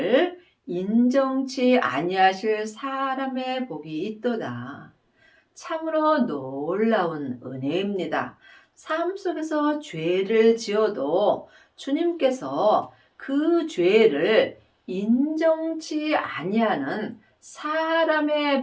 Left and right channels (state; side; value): identical; both; correlation 1.00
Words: 인정치 아니하실 사람의 복이 있도다. 참으로 놀라운 은혜입니다. 삶 속에서 죄를 지어도 주님께서 그 죄를 인정치 아니하는